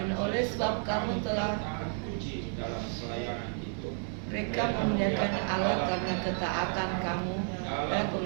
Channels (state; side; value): silent; left; 57 dB below the other